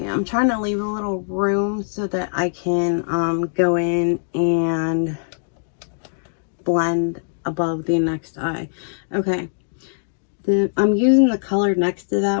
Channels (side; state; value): right; silent; digital silence